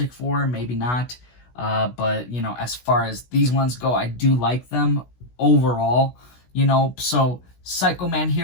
Four, maybe not. But, you know, as far as these ones go, I do like them overall, you know. So Psychoman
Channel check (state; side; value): late; right; 16 ms